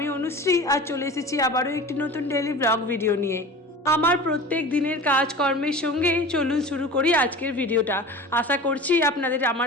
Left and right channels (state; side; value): normal; both; correlation 0.36